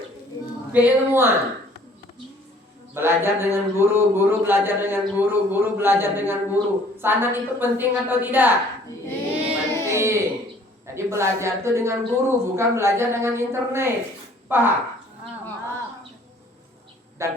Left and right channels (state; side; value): normal; both; correlation 0.56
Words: keilmuan. Belajar dengan guru, guru belajar dengan guru, guru belajar dengan guru. Sanad itu penting atau tidak? Penting. Jadi belajar itu dengan guru, bukan belajar dengan internet. Paham?